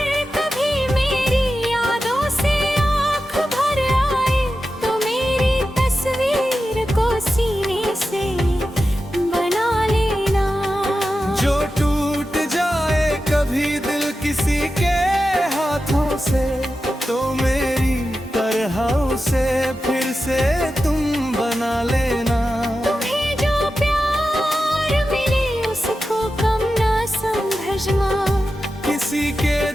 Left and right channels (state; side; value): normal; both; correlation 0.92